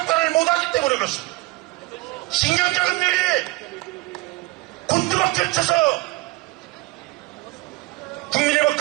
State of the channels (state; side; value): quieter; left; 22.3 dB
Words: 못하기 때문에 그렇습니다. 식량자급률이 곤두박질 쳐서 국민의